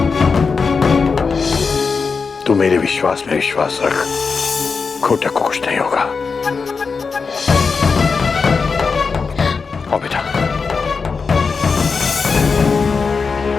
तू मेरे विश्वास में विश्वास रख, घोटक को कुछ नहीं होगा। आओ बेटा।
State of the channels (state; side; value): quieter; right; 5.0 dB